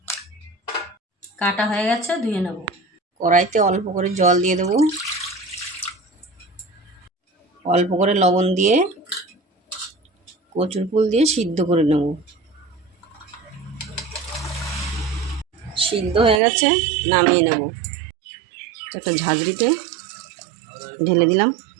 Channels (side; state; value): left; drops out; at 16.4 s